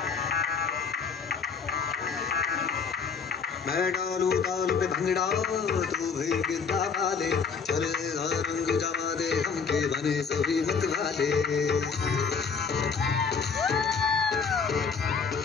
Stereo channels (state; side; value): quieter; right; 5.7 dB